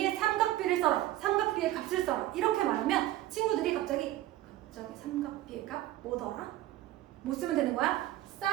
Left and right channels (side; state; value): left; quieter; 15.0 dB